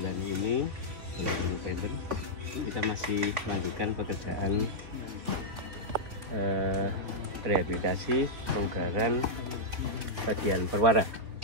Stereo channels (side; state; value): left; late; 3.6 ms